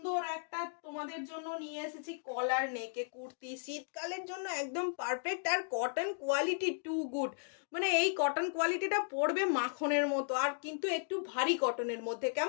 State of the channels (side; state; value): right; silent; digital silence